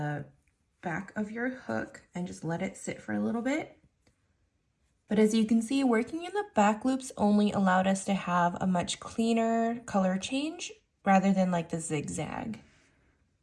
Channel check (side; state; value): both; identical; correlation 1.00